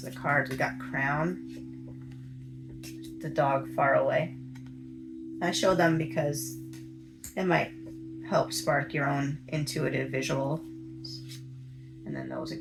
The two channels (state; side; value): identical; both; correlation 1.00